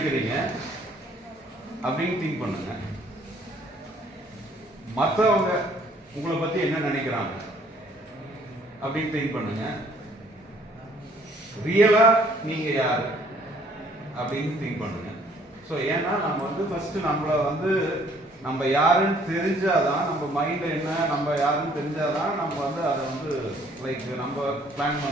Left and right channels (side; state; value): both; normal; correlation 0.61